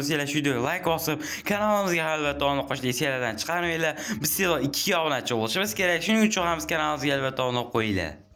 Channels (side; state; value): both; identical; correlation 1.00